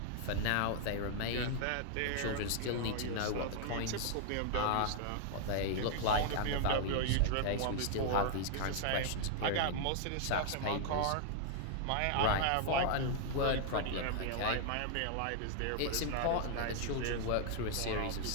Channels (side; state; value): both; different; correlation 0.00